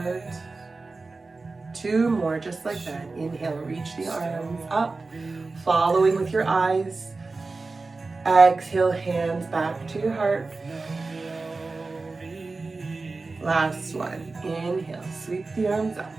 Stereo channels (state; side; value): quieter; left; 3.7 dB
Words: 2 more, just like that. Inhale, reach the arms up, following with your eyes. Exhale, hands back to your heart. Last one. Inhale, sweep the arms up.